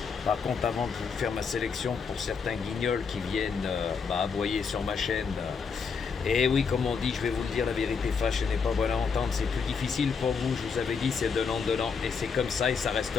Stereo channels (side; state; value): right; quieter; 5.7 dB